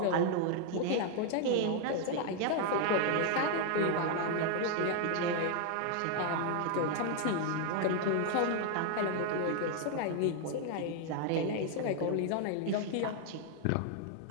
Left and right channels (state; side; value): different; both; correlation 0.00